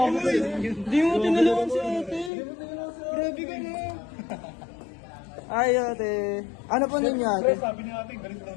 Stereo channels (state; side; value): drops out; right; at 2.3 s